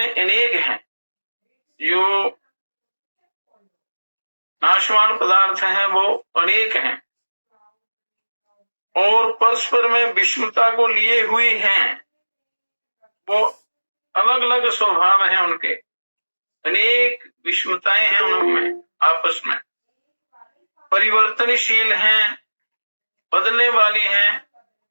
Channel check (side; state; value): both; inverted; correlation -1.00